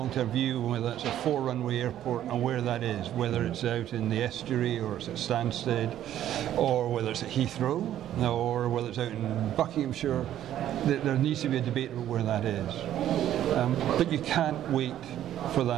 view, whether it's a 4-runway airport and where that is, whether it's out in the estuary or it's at Stansted, or whether it's at Heathrow, or whether it's out in Buckinghamshire. There needs to be a debate about where that is. But you can't wait for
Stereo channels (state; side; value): quieter; left; 11.7 dB